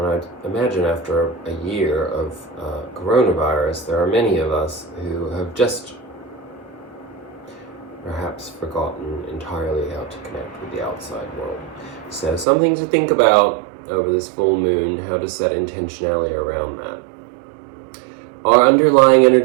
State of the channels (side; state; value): left; drops out; at 12.5 s